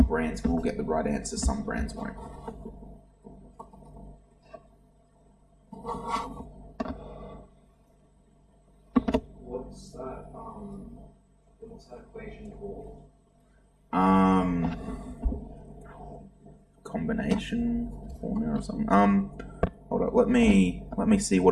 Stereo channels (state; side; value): identical; both; correlation 1.00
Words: brands will get the right answer, some brands won't. What's that equation called? Combination formula or something. Hold up, let me see